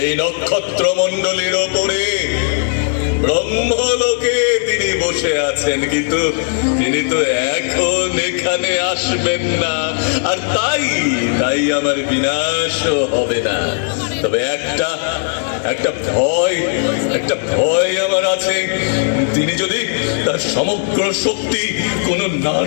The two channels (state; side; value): silent; right; 68 dB below the other